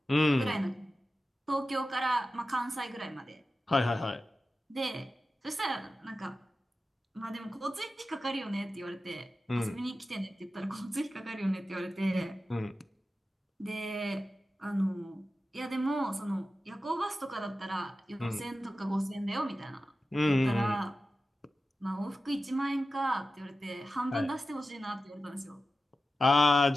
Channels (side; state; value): both; normal; correlation 0.93